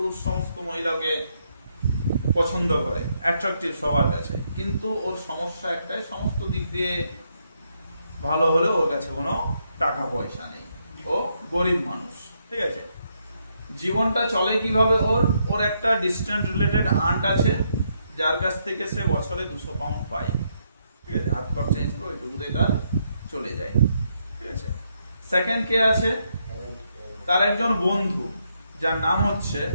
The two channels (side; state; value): both; inverted; correlation -0.77